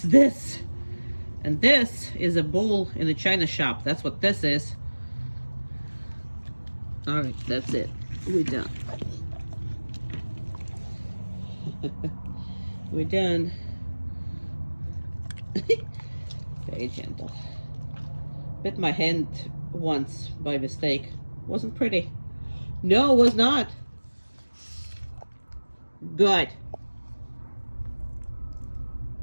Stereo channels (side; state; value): both; inverted; correlation -1.00